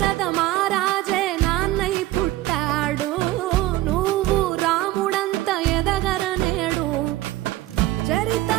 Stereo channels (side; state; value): left; quieter; 16.3 dB